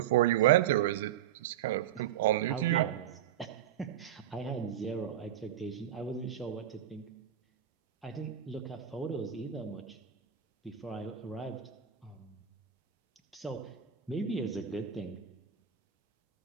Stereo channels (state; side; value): quieter; left; 10.3 dB